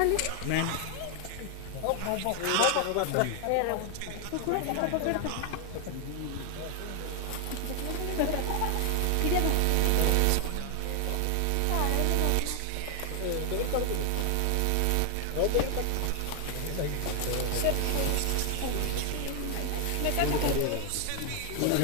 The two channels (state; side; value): different; both; correlation 0.00